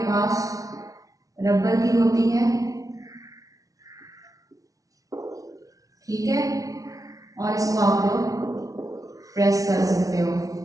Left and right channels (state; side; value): late; left; 0.17 ms